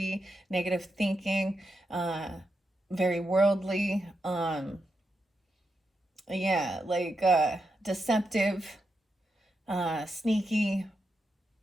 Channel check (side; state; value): both; normal; correlation 0.86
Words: negative thinking, very worldly, deceptive, sneaky,